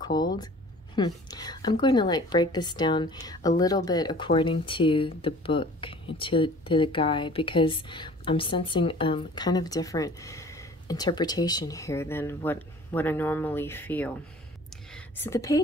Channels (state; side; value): normal; both; correlation 0.48